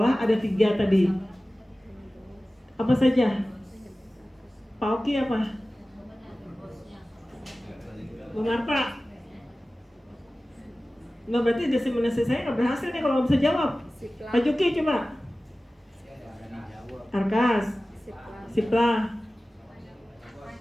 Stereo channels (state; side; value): normal; both; correlation 0.96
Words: ada 3 tadi. Apa saja? Pak Oki apa? Bu Marta? Nggak, berarti diseminasi saya nggak berhasil nih kalau nggak bisa jawab. Siplah. Pak Juki coba. Arkas, Siplah.